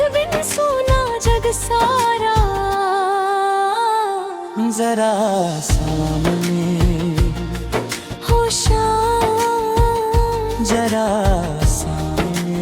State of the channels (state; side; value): identical; both; correlation 1.00